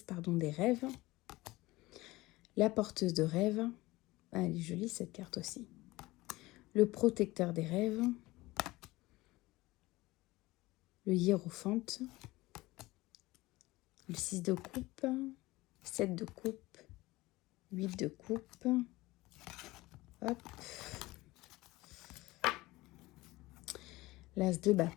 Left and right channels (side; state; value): right; quieter; 19.8 dB